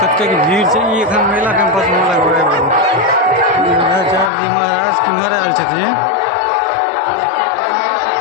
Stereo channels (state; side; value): drops out; right; at 4.3 s